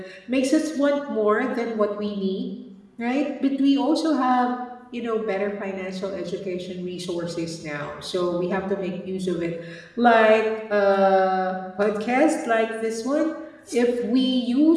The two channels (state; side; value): identical; both; correlation 1.00